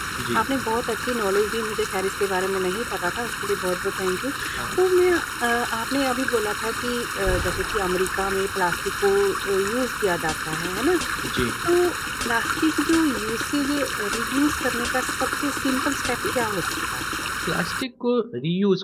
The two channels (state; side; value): identical; both; correlation 1.00